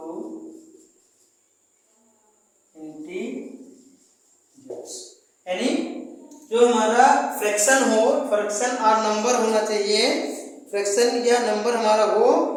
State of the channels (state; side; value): identical; both; correlation 1.00